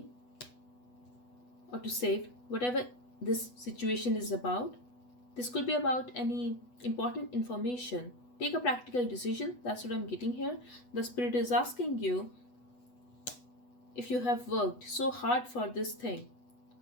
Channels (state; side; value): late; right; 8.1 ms